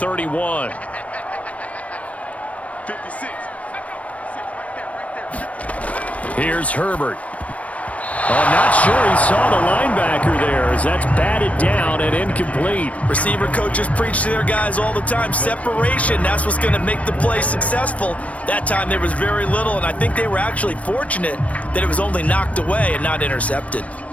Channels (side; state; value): right; late; 0.066 ms